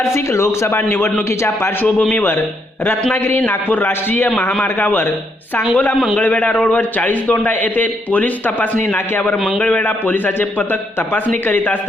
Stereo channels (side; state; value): both; normal; correlation 0.75